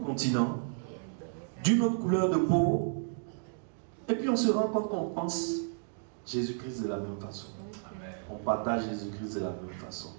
continent, d'une autre couleur de peau. Et puis on se rend compte qu'on pense Jésus-Christ de la même façon. On partage Jésus-Christ de la même façon.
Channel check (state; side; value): silent; left; digital silence